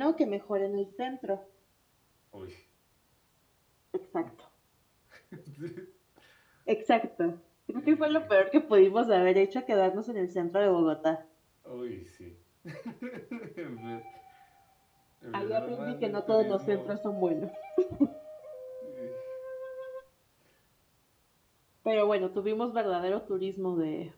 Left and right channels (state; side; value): identical; both; correlation 1.00